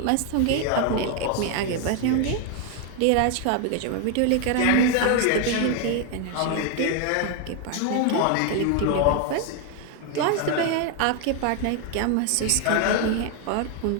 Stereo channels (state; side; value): different; both; correlation 0.01